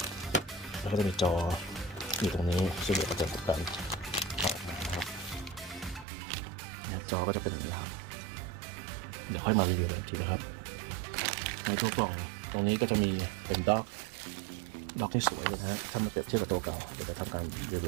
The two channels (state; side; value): drops out; left; at 6.1 s